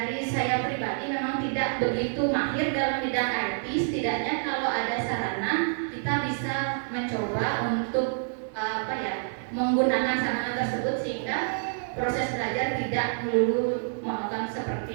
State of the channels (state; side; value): silent; left; 60 dB below the other